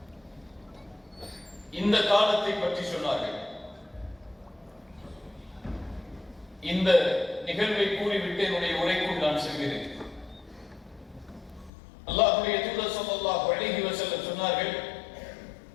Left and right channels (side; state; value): right; drops out; at 11.7 s